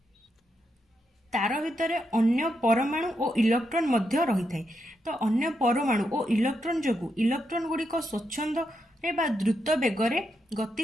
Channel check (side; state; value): both; normal; correlation 0.82